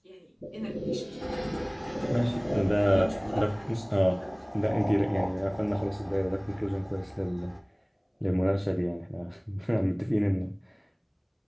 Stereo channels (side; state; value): both; identical; correlation 1.00